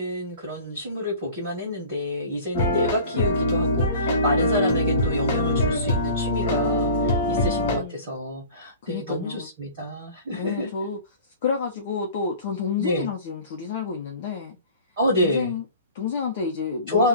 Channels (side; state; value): both; inverted; correlation -0.42